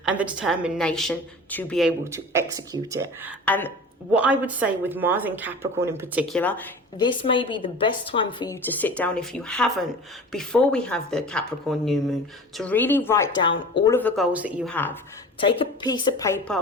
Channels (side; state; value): both; normal; correlation 0.37